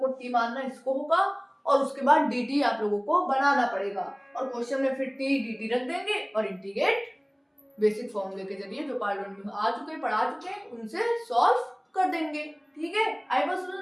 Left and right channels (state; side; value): identical; both; correlation 1.00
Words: टी मानना इसको होगा और उसके बाद dt आप लोगों को बनाना पड़ेगा और क्वेश्चन में फिर t dt रख देंगे और इंटीग्रेट बेसिक फॉर्मूले के जरिए जो पार्ट 1 में आ चुके पढ़ा चुके हैं उनसे सॉल्व कर देंगे, ठीक है। आई बस